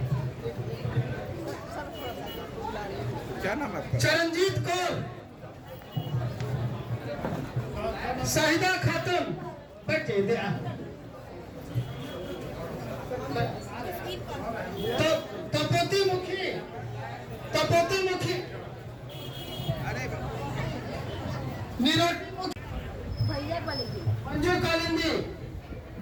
क्या नाम है आपका? चरणजीत कौर, शाहिदा खातून, बैठे दे तपोती मुखी, तपोती मुखी, निरोटी मुखी, भैया बोलेगी मंजू कालिंदी,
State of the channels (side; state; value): both; identical; correlation 1.00